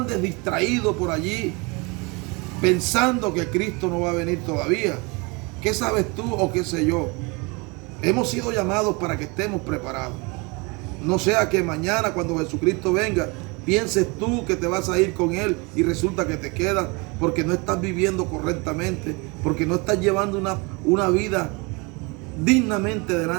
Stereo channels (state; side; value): quieter; left; 28.3 dB